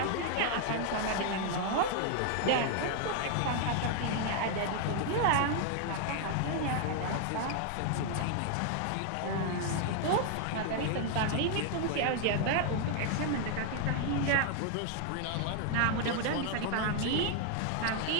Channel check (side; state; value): both; different; correlation 0.00